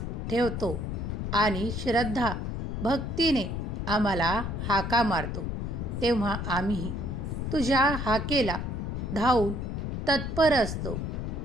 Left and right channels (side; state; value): left; noise; rumble, 3 dB below the sound